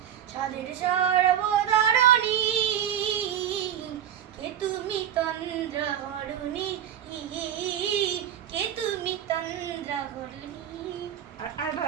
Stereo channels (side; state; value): left; quieter; 10.2 dB